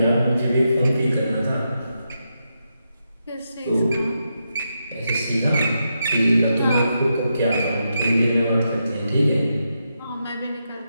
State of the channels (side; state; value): both; inverted; correlation -0.85